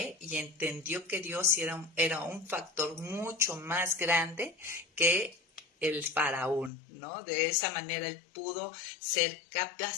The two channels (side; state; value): right; drops out; at 6.7 s